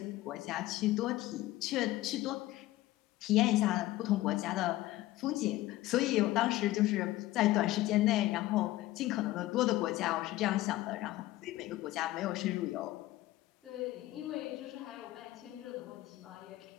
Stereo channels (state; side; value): quieter; right; 16.5 dB